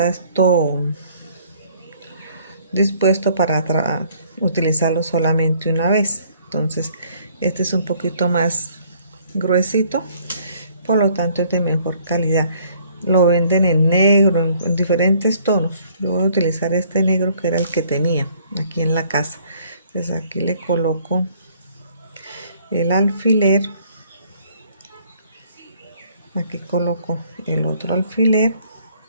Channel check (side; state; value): both; inverted; correlation -0.61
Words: dispuesto para utilizarlo solamente una vez. Entonces este es un poquito más gruesito, por lo tanto es de mejor calidad. Lo venden en negro, en diferentes tonos. Yo voy a utilizar este negro que era el que tenía aquí en la casa. Entonces aquí le coloco el alfiler. Aquí coloco el otro alfiler